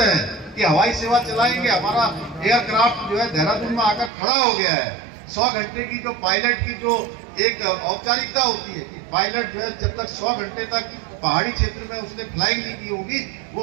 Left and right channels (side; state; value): left; drops out; at 4.1 s